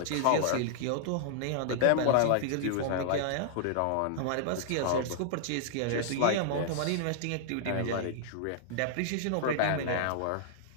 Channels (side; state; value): both; different; correlation -0.01